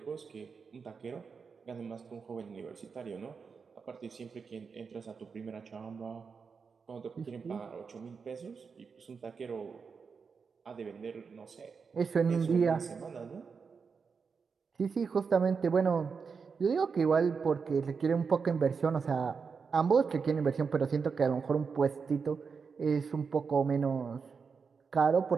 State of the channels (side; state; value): left; quieter; 5.5 dB